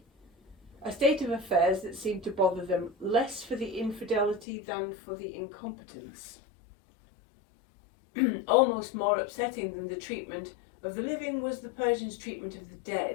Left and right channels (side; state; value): right; drops out; at 4.5 s